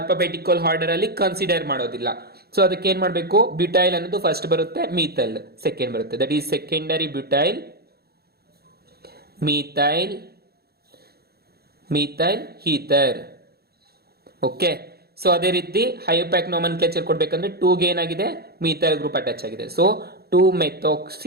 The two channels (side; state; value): left; late; 0.46 ms